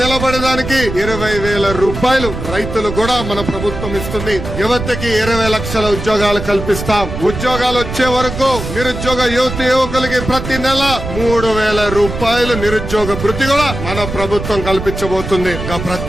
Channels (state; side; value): noise; right; rumble, 7 dB below the sound